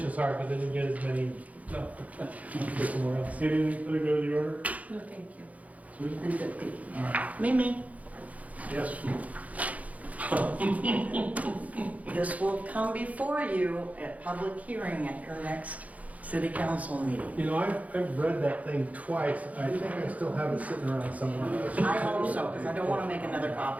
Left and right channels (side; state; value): left; late; 0.071 ms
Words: as hard, but they didn't get as many, so, go somewhere else. Anything for the good of the order? No, thank you. Susan? I'm good, thank you. All right, Mimi, yes. this will come before you at public hearing at your next city council meeting. You know, I've read that thing twice. I think I still have it sitting around somewhere. I hope so, because I don't want to make another